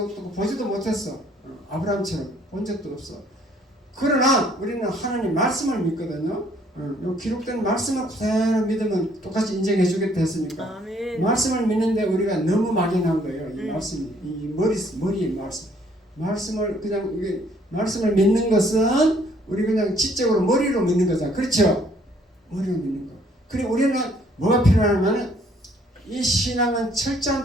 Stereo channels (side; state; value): both; normal; correlation 0.63